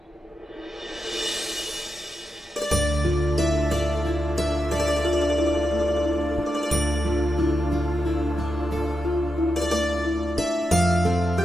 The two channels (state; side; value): normal; both; correlation 0.88